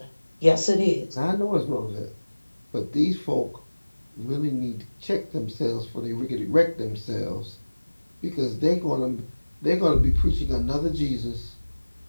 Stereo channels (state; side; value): inverted; both; correlation -1.00